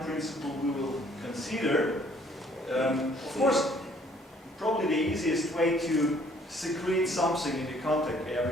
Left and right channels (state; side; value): normal; both; correlation 0.61